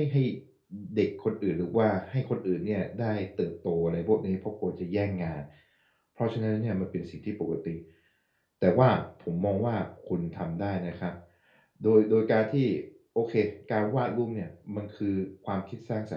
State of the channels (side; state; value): both; identical; correlation 1.00